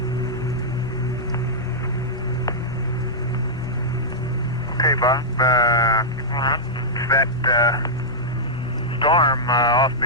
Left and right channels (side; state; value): left; noise; rumble, 16 dB below the sound